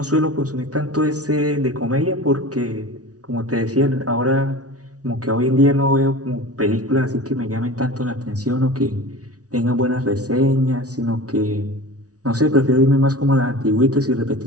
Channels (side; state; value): left; late; 0.68 ms